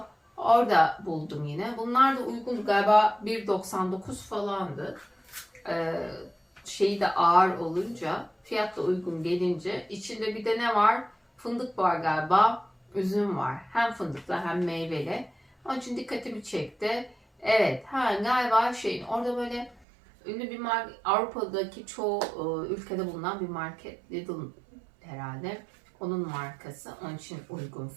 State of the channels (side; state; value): left; drops out; at 19.9 s